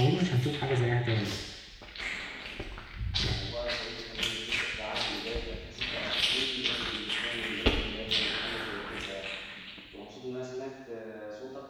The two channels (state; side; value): identical; both; correlation 1.00